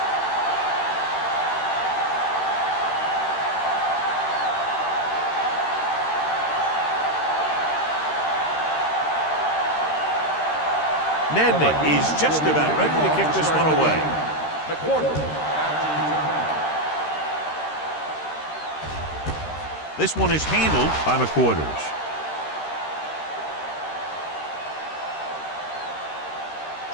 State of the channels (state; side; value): late; right; 13 ms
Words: Nedman is just about ready to kick this one away. This one is handled by McQuarters.